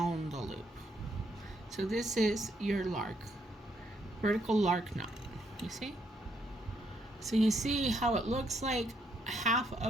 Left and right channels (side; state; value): both; normal; correlation 0.74